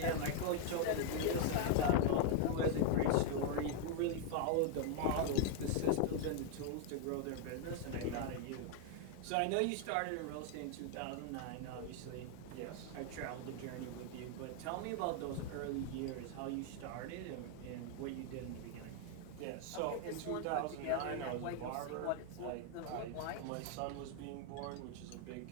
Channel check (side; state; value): both; different; correlation 0.00